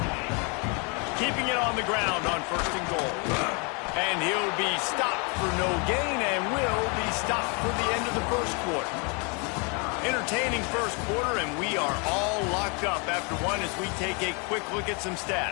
Keeping it on the ground on 1st and goal. And he'll be stopped for no gain and will be stopped for the end of the first quarter. Entertaining first quarter, and we are all locked up after one as we take a quick look at some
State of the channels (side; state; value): right; quieter; 33.5 dB